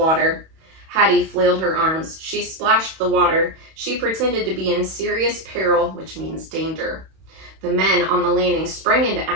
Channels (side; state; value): left; late; 31 ms